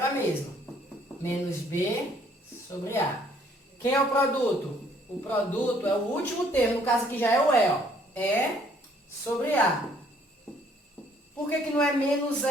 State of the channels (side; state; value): both; normal; correlation 0.63